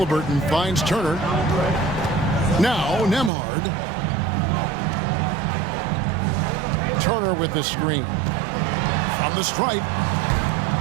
finds Turner. Now Nembhard. Turner with the screen. From the stripe.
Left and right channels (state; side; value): drops out; left; at 3.3 s